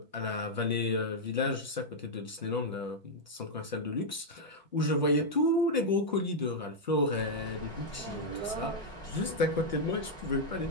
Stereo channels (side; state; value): both; normal; correlation -0.03